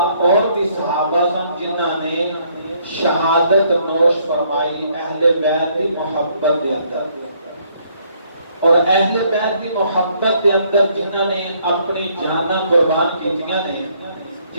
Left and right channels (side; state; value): both; inverted; correlation -0.67